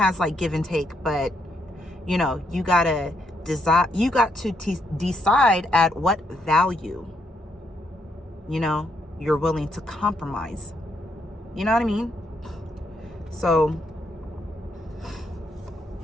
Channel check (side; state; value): both; normal; correlation 0.76